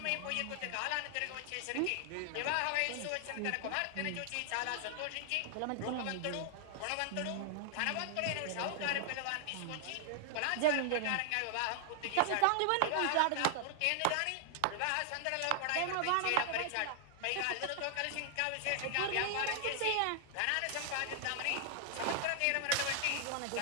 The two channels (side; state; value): both; different; correlation 0.00